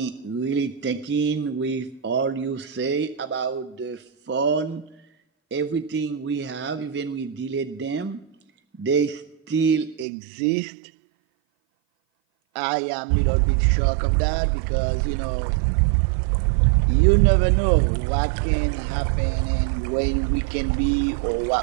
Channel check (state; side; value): drops out; left; at 10.1 s